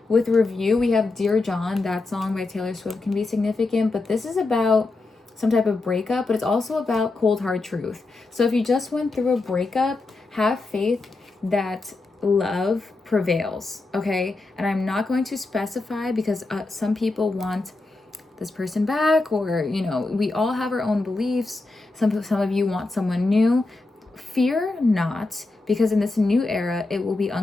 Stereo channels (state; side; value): quieter; right; 3.3 dB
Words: with review, we have Dear John. That song by Taylor Swift can be significant, but this is about some type of breakup, but it's also about cold hard truth. So if you just went through a breakup, have faith that love prevails, okay? And I'm not going to specify because some people want this person back, or, you know, we all have our own beliefs. Some of you want someone new. Fear not, because in this new era, it will be